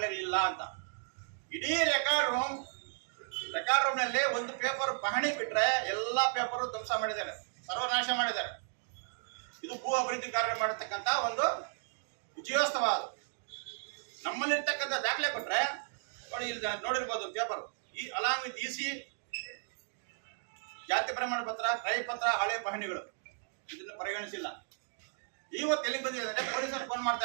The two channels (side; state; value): left; silent; digital silence